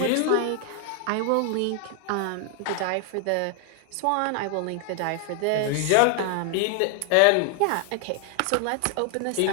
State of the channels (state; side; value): different; both; correlation 0.00